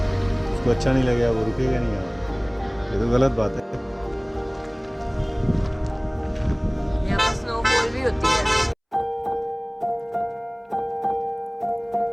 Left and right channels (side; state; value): both; identical; correlation 1.00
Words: उसको अच्छा नहीं लगेगा, वो रुकेगा नहीं यहाँ। ये तो गलत बात है। यहाँ पर स्नोफॉल भी होती है।